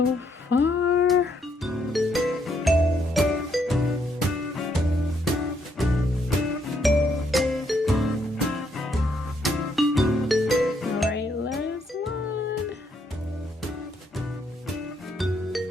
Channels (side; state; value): both; normal; correlation 0.73